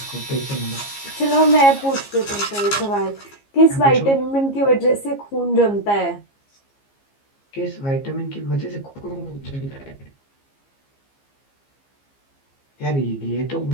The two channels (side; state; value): right; late; 15 ms